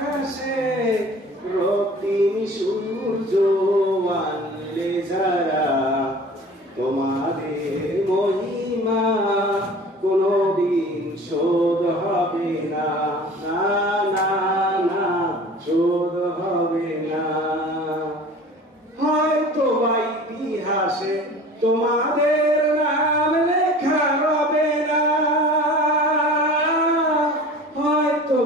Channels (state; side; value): normal; both; correlation 0.42